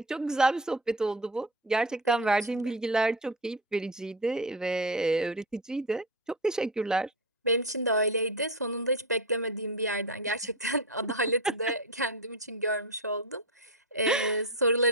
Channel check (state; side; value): normal; both; correlation 0.20